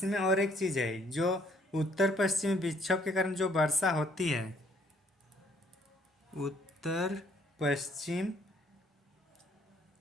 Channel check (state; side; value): normal; both; correlation 0.64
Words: और एक चीज़ है, जो उत्तर पश्चिमी विक्षोभ के कारण जो वर्षा होती है, उत्तर पश्चिम